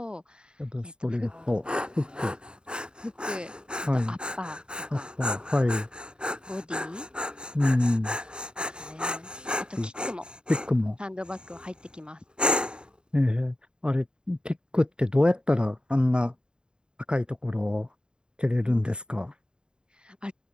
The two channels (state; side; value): late; left; 0.049 ms